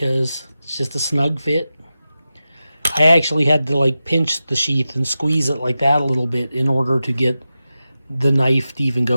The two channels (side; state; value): both; inverted; correlation -0.92